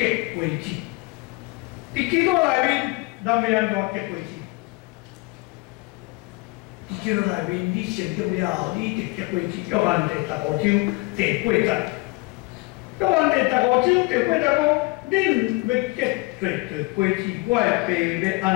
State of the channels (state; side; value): quieter; right; 25.3 dB